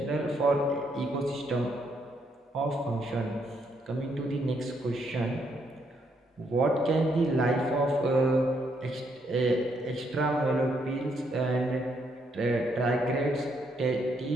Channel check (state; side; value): normal; both; correlation 0.74